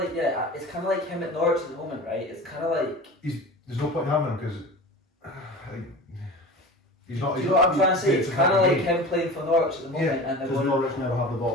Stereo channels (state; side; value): normal; both; correlation 0.35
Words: it's kind of like him at Norwich at the moment, right? It's kind of like There's no point in having him because he's not. do you know what I'm trying to say? It's kind of like him. him playing for Norwich at the moment, and they're Because going. Norwich never have the ball,